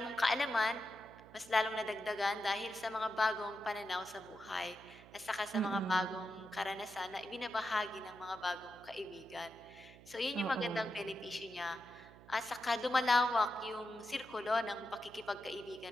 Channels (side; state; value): right; noise; hum, 20 dB below the sound